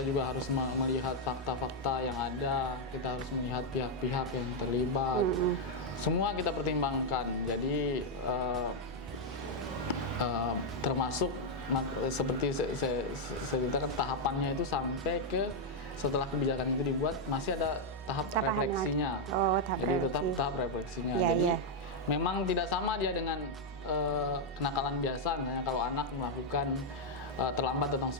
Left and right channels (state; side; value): normal; both; correlation -0.01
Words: juga harus melihat fakta-fakta yang ada. Kita harus melihat pihak-pihak yang terlibat. Semua kita pertimbangkan. Jadi termasuk seperti saya ceritakan, tahapannya itu sampai ke setelah kebijakan itu dibuat masih ada tahap refleksinya. Jadi tetap tahap refleksinya. Jadi memang tidak sama dia dengan kenakalan biasa. Misalnya kalau anak melakukan terlambat datang